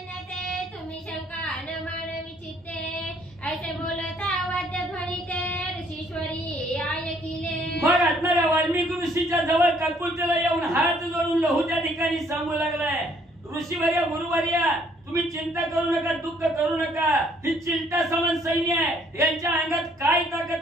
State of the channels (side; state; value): both; normal; correlation 0.63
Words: तुम्ही शंका न मानवी चित्ते, ऐसे बोलता वाद्य ध्वनीते ऋषीश्वरी ऐकिले. मग असणाऱ्या वाल्मिक ऋषीच्या जवळ काकुलतेला येऊन हात जोडून लहू त्या ठिकाणी सांगू लागलाय, ऋषीवर्या गुरुवर्या तुम्ही चिंता करू नका, दुःख करू नका, ही चिंता समान सैन्य आहे, यांच्या अंगात काय